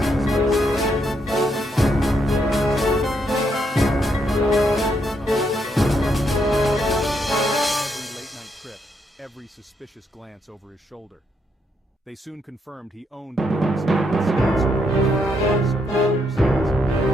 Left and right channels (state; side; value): normal; both; correlation 0.77